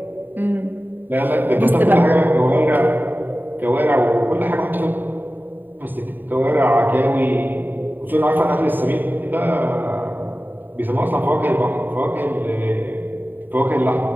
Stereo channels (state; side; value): late; left; 0.091 ms